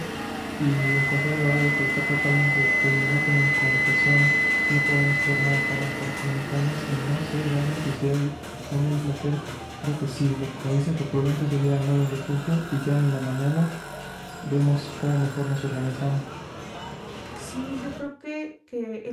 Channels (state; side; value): identical; both; correlation 1.00